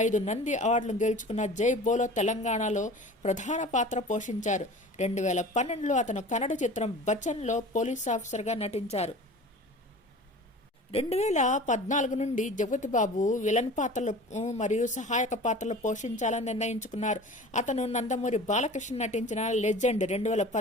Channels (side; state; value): both; normal; correlation 0.40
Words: 5 నంది అవార్డులు గెలుచుకున్న జై బోలో తెలంగాణలో ప్రధాన పాత్ర పోషించారు. 2012లో అతను కన్నడ చిత్రం బచ్చన్లో పోలీస్ ఆఫీసర్గా నటించారు. 2014 నుండి జగపతిబాబు విలన్ పాత్రలు మరియు సహాయక పాత్రలు పోషించాలని నిర్ణయించుకున్నారు. అతను నందమూరి బాలకృష్ణ నటించిన లెజెండ్